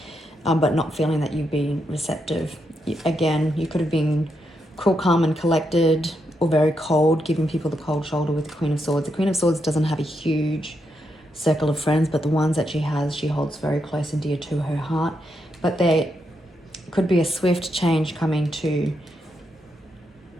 not feeling that you've been receptive. Again, you could have been cool, calm, and collected, or very cold, giving people the cold shoulder with the Queen of Swords. The Queen of Swords doesn't have a huge circle of friends, but the ones that she has, she holds very close and dear to her heart. But there could be a swift change coming to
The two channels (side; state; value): both; normal; correlation 0.82